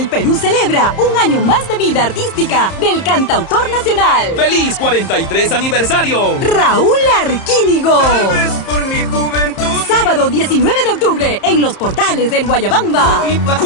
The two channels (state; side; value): late; right; 30 ms